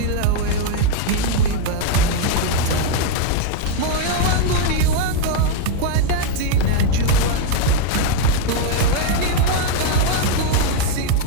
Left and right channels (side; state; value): both; different; correlation 0.01